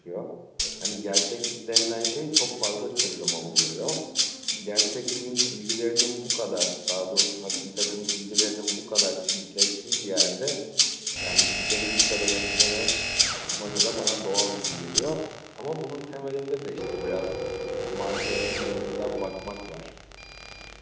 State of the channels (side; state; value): both; identical; correlation 1.00